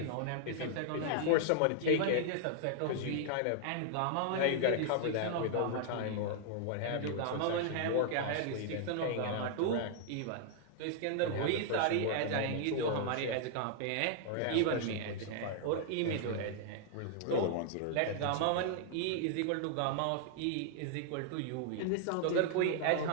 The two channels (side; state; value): both; different; correlation 0.00